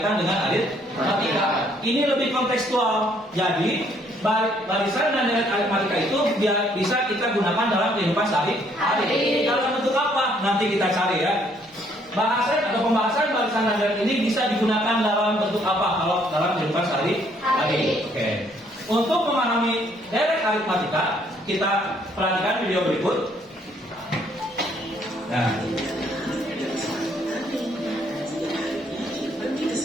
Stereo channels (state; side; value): normal; both; correlation 0.66